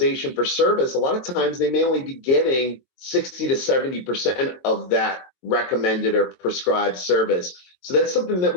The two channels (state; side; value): late; right; 22 ms